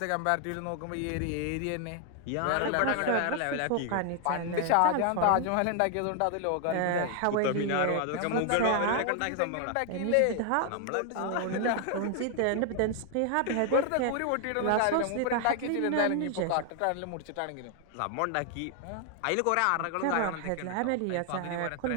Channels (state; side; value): different; both; correlation 0.00